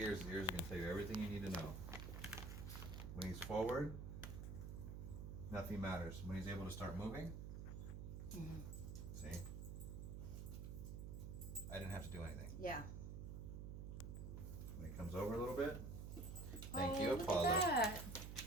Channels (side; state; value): right; noise; hum, 6 dB below the sound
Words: are going to tell you everything you need to know. When he's forward, nothing matters. When he's able to start moving, see? I didn't have to do anything. Yeah. When he comes over a little bit, thank you, look Apollo. at that.